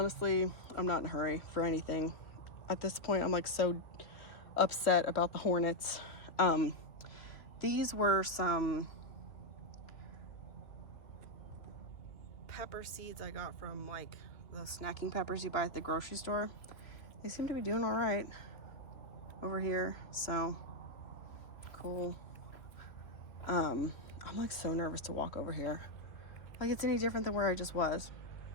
I'm not in a hurry for anything. At this point, I'm like so upset about the hornets. These were some pepper seeds I got from like those snacking peppers you buy at the grocery store. They seem to be doing all right over here, so cool. I'm like so nervous to walk over here. Like it's any different than where I just was.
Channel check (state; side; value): late; right; 2.8 ms